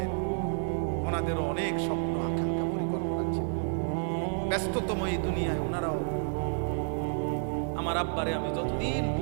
ওনাদেরও অনেক স্বপ্ন আকাঙ্ক্ষা পরিকল্পনা ছিল। ব্যস্ততম এই দুনিয়ায় ওনারাও, আমার আব্বারে আমি যতদিন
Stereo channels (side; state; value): left; silent; digital silence